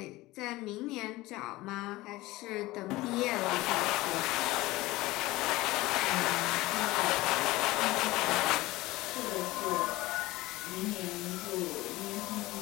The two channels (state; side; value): quieter; right; 19.2 dB